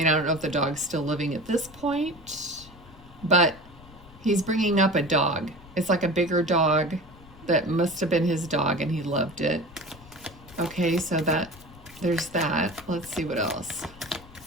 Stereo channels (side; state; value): left; noise; rumble, 21 dB below the sound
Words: I don't know if the dog's still living at this point, but he's bringing up a dog. It's like a bigger dog that must have been his dog and he loved it. Okay, so there's that. Let's see what else.